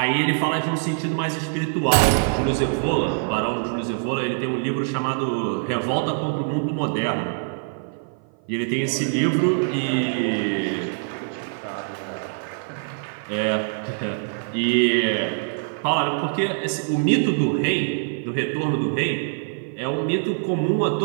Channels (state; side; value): silent; left; 55 dB below the other